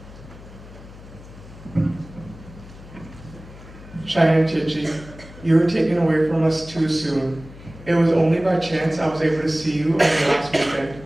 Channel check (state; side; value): noise; left; hum, 18 dB below the sound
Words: Cheyenne Chichi, you were taken away from us too soon. It was only by chance I was able to see you on the last